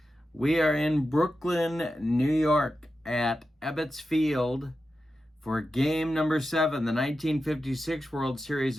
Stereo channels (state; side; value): normal; both; correlation 0.91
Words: We are in Brooklyn, New York at Ebbets Field for game number 7. The 1956 World Series,